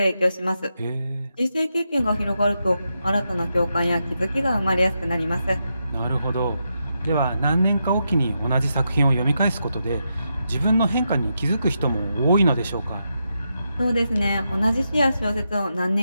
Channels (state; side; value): inverted; both; correlation -0.85